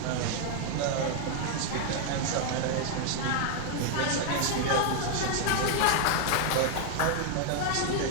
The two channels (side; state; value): both; different; correlation 0.00